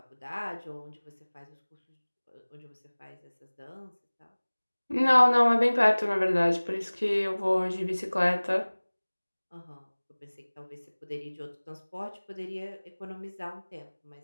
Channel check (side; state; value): both; inverted; correlation -1.00